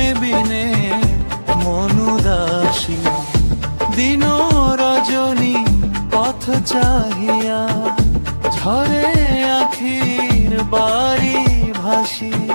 বিনে মন উদাসী। দিন রজনী পথ চাহিয়া, ঝরে আখির বাড়ি ভাসি।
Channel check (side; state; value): both; inverted; correlation -1.00